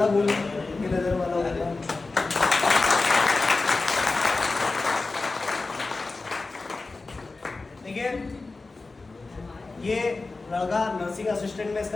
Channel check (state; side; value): quieter; right; 3.6 dB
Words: बोल की नजर में अलग होगा। देखिए ये लड़का नर्सिंग असिस्टेंट में